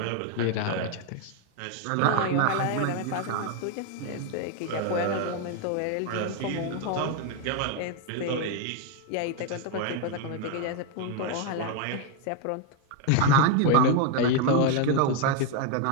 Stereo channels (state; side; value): different; both; correlation 0.00